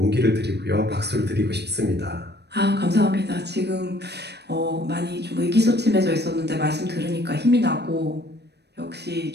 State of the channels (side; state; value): left; late; 0.49 ms